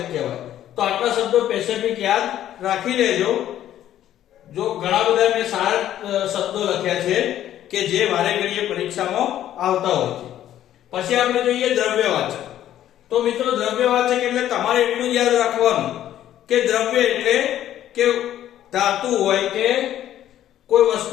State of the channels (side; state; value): right; quieter; 11.9 dB